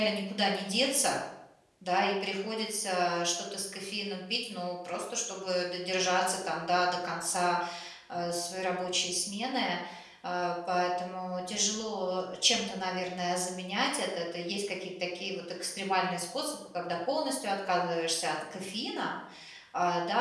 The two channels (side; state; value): both; identical; correlation 1.00